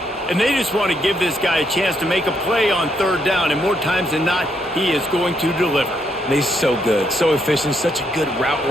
And they just want to give this guy a chance to make a play on 3rd down, and more times than not, he is going to deliver. And he's so good, so efficient, such a good route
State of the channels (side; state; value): both; normal; correlation 0.75